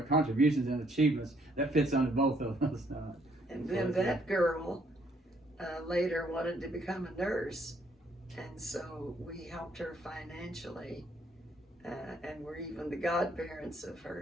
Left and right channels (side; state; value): both; normal; correlation 0.68